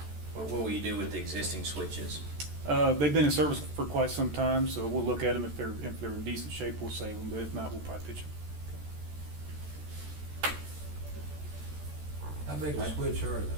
What will you do with the existing switches? They've been in service for quite some time, so we'll look at them. If they're in decent shape, we'll save them, but if not, we'll probably pitch them. How big a switch are those?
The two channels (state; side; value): late; left; 14 ms